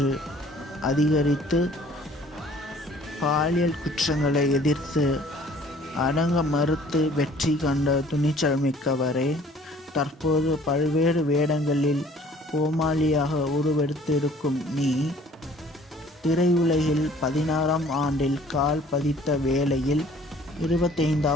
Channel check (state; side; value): normal; both; correlation 0.54